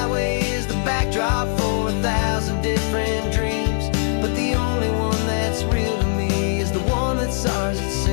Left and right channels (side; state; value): right; silent; 63 dB below the other